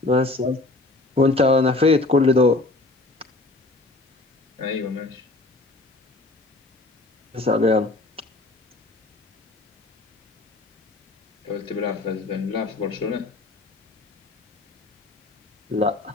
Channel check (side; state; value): right; quieter; 3.1 dB